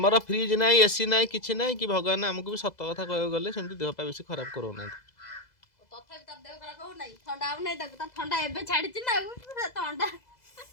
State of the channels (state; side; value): late; right; 2.0 ms